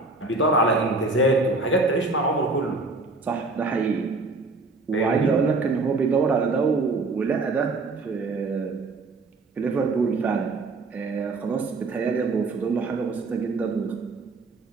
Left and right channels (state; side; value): quieter; left; 3.5 dB